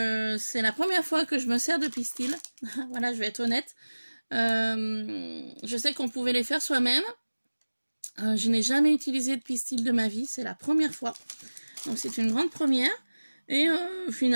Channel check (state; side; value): inverted; both; correlation -1.00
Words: la première fois que je me sers de pistils. Voilà, je vais être honnête. Je sais qu'on pouvait les faire soi-même. Je n'ai jamais utilisé de pistils de ma vie. C'est la première fois. Donc c'est une grande première. Et